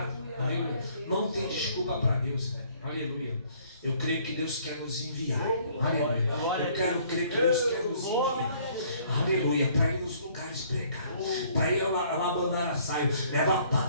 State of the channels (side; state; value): both; inverted; correlation -0.60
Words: Aleluia. Não tem desculpa para Deus. Aleluia. Eu creio que Deus quer nos enviar. Aleluia. Eu quero crer que Deus quer nos enviar. Aleluia. Para ir nos lugares pregar. Para ir abandonar a saio. Leva a